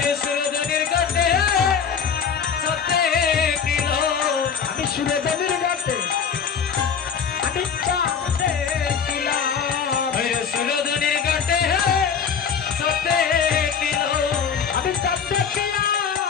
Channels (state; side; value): quieter; right; 6.9 dB